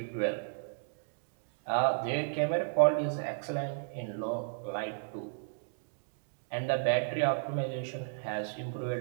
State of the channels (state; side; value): silent; left; digital silence